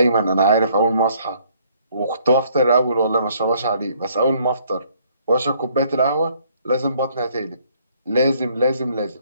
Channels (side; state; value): both; inverted; correlation -0.64